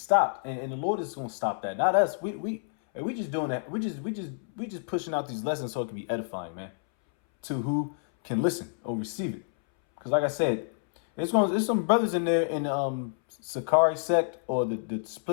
And the Lord is going to stop that. Not us. We just doing that. We just pushing out these lessons so it can be edifying, man, to who can listen or receive it. Because like I said, there's some brothers in there in Sakari sect or the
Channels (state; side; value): silent; right; 59 dB below the other